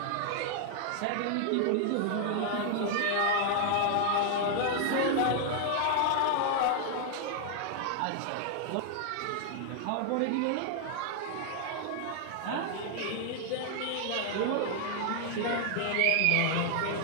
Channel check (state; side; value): different; both; correlation 0.00